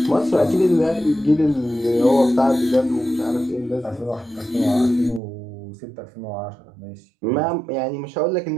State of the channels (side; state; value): left; drops out; at 5.2 s